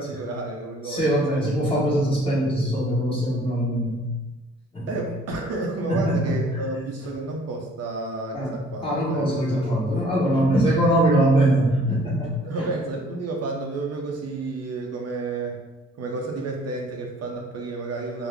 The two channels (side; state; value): both; normal; correlation 0.55